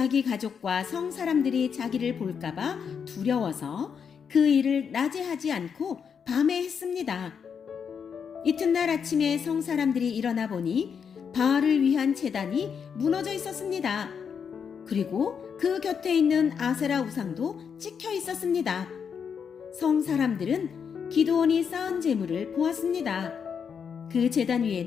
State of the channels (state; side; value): quieter; right; 6.8 dB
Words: 가족과 성 사람들이 자기를 볼까봐 두려워서 그 일을 낮에 하지 않고 밤에 했습니다. 이튿날 아침에 성 사람들이 일어나 보니 바알을 위한 제단이 무너져 있었습니다. 그리고 그 곁에 있는 아세라 우상도 찍혀 있었습니다. 성 사람들은 기드온이 쌓은 제물을 보았습니다. 그 제단